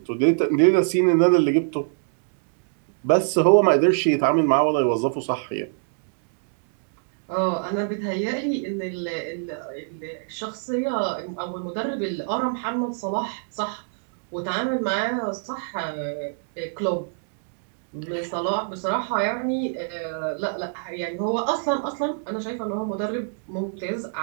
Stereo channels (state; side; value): silent; left; digital silence